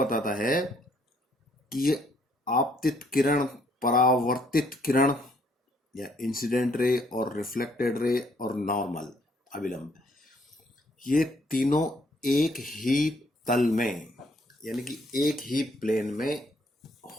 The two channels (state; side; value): normal; both; correlation 0.67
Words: है कि ये आपतित किरण, परावर्तित किरण या इंसिडेंट रे और रिफ्लेक्टेड रे और नॉर्मल अभिलंब, ये तीनों एक ही तल में यानी कि एक ही प्लेन में